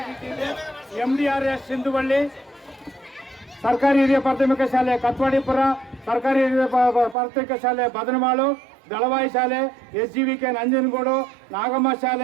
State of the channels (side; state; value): left; drops out; at 7.2 s